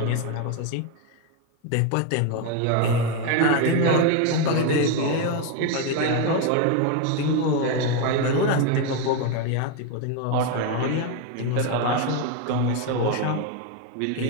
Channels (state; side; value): different; both; correlation 0.02